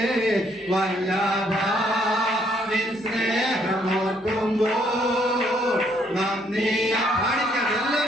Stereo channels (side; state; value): both; normal; correlation 0.69